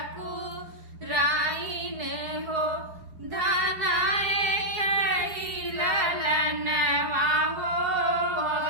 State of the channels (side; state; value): left; late; 4.6 ms